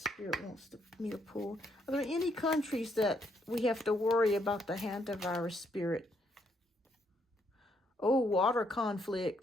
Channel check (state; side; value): normal; both; correlation 0.74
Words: wants me to pull. Are there any countries that we have to worry about the hantavirus, Spirit? Oh, water